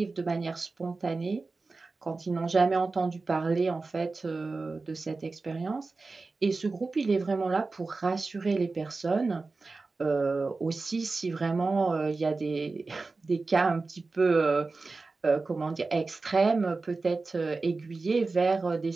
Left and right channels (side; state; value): left; quieter; 3.8 dB